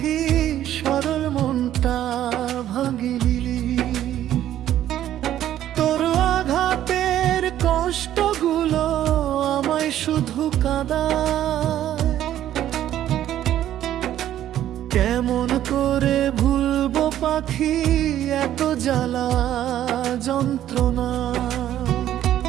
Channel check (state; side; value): quieter; left; 12.0 dB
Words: সরল মনটা ভাঙিলি? তোর আঘাতের কষ্টগুলো আমায় শুধু কাঁদায়। কেমন করে ভুলবো পাখি এত জ্বালা যন্ত্রণা?